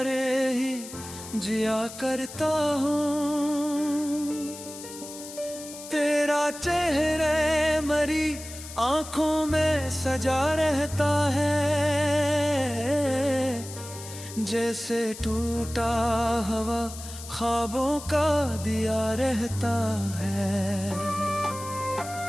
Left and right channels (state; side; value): noise; left; hiss, 13 dB below the sound